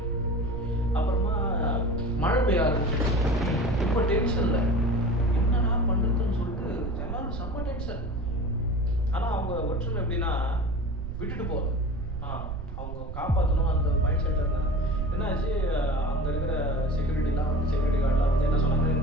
அப்புறமா மழை பெய்ய ஆரம்பிச்சு. ரொம்ப டென்ஷன்ல என்னடா பண்றதுன்னு சொல்லிட்டு எல்லாரும் செம்ம டென்ஷன். ஆனா அவங்க ஒற்றுமை எப்படின்னா விட்டுட்டு போகுது, அவங்க காப்பாற்றணும் அந்த மைண்ட் செட்ல இருந்தாங்க. என்னாச்சு, அங்க இருக்கிற செக்யூரிட்டிலாம் வந்து செக்யூரிட்டி கார்டெலாம் வந்து என்ன சொன்னாங்க,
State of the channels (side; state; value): right; noise; rumble, 7 dB below the sound